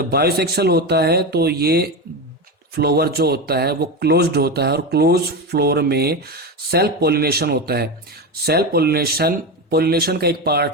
बायोसेक्सुअल होता है तो ये फ्लावर जो होता है वो क्लोज्ड होता है और क्लोज फ्लोर में सेल्फ पॉलिनेशन होता है। सेल्फ पॉलिनेशन का एक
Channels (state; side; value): normal; both; correlation 0.18